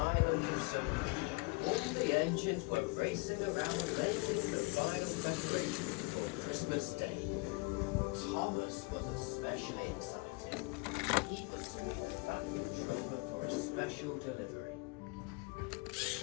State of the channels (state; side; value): quieter; right; 28.0 dB